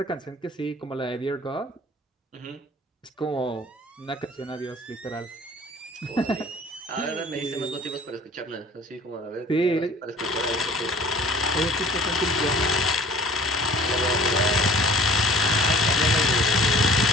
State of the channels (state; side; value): normal; both; correlation 0.48